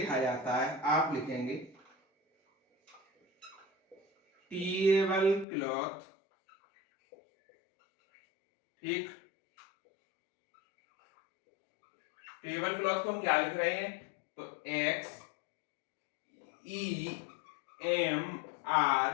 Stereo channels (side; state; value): right; drops out; at 5.5 s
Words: जाता है, आप लिखेंगे टेबल क्लॉथ, ठीक। टेबल क्लॉथ को हम क्या लिख रहे हैं, तो X E M